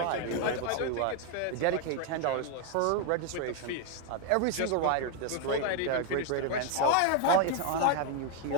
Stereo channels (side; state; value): both; different; correlation 0.01